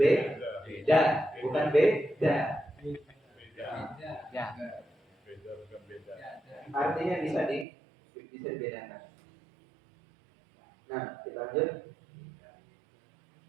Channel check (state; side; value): drops out; left; at 7.7 s